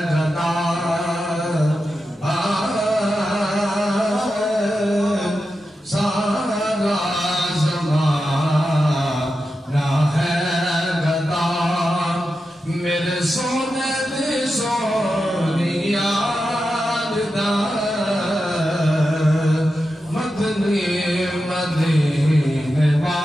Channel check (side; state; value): both; normal; correlation 0.90